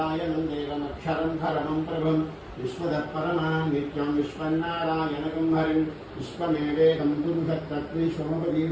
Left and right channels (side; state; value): both; identical; correlation 1.00